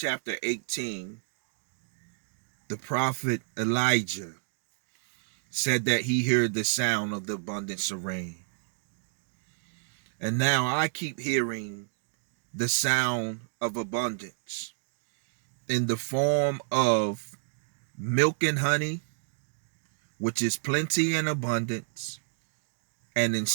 18, the prophet Elijah said that he heard the sound of the abundance of rain. And now I keep hearing the sound of abundance in the form of milk and honey, which is plenty and abundance, and in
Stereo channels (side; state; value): left; silent; digital silence